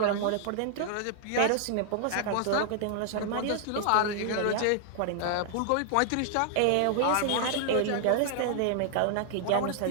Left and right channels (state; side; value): different; both; correlation -0.01